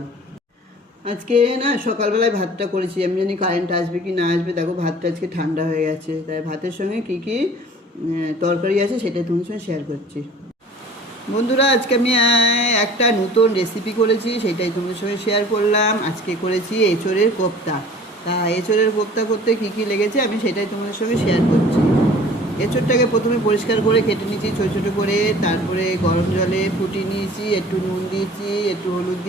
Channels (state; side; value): normal; both; correlation 0.47